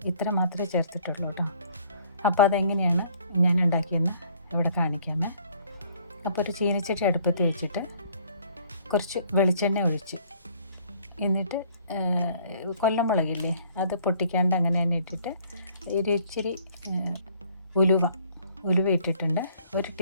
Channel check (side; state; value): both; inverted; correlation -0.59